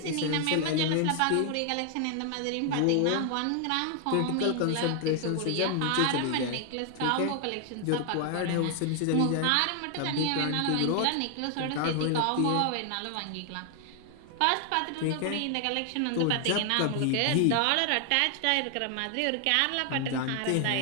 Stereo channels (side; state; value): both; different; correlation 0.00